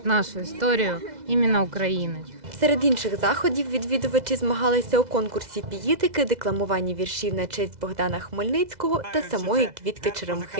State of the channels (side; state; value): left; late; 2.0 ms